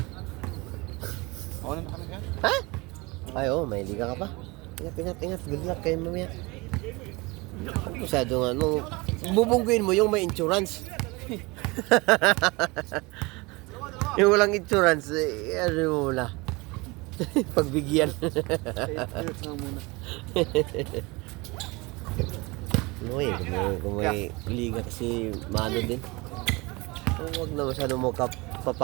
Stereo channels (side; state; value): left; quieter; 24.8 dB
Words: Ako na kami ka? Ha? Ay, oh, may liga ka pa. Ingat. Good luck kayo mamaya. Masyadong ano, bubungguin mo yung may insurance. Yung walang insurance, ano mo na. Pagbigyan. muna. Kung may liga kasi mano din. Huwag na masyadong mo